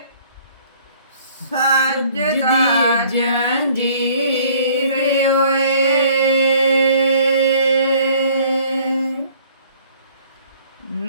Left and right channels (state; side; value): inverted; both; correlation -0.56